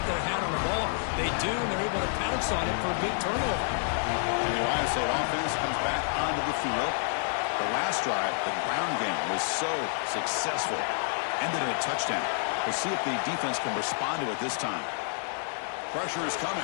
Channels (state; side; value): silent; right; 59 dB below the other